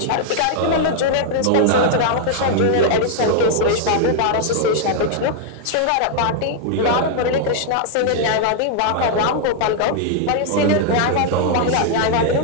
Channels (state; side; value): different; both; correlation 0.00